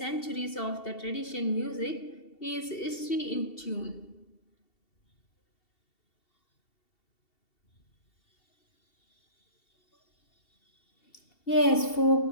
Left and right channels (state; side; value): late; right; 2.7 ms